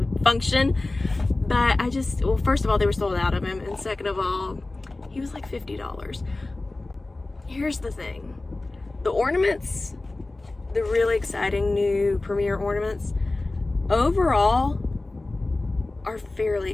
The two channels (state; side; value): quieter; right; 3.0 dB